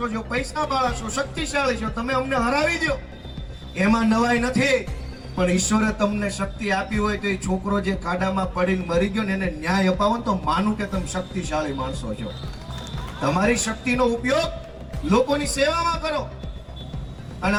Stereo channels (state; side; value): identical; both; correlation 1.00